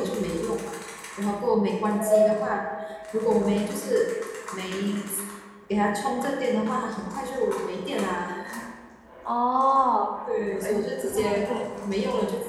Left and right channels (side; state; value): both; identical; correlation 1.00